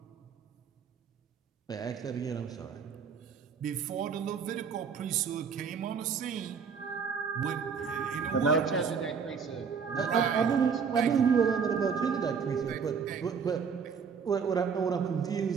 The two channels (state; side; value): quieter; left; 6.2 dB